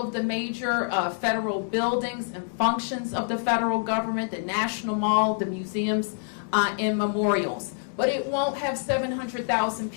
the major federal buildings and functions of the federal government, the National Mall, the museums, and memorials. But it won't have 700,000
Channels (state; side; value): silent; right; digital silence